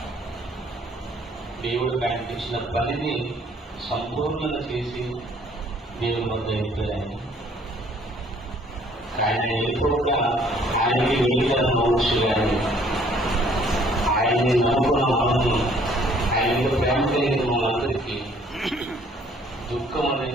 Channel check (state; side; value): normal; both; correlation 0.60